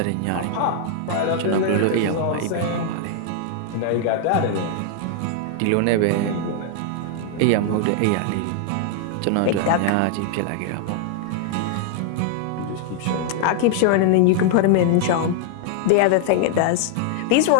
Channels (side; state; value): both; different; correlation 0.00